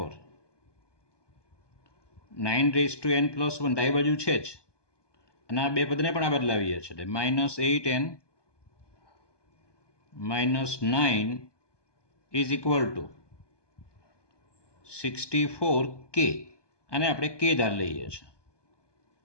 9n+1 ડાબી બાજુ છે જ, અને આ બે પદને પણ આ બદલાવીએ છીએ, એટલે -8n-9 is equal two 64k. આને આપણે કે ધાર લઈએ છીએ,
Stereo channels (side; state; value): right; late; 1.2 ms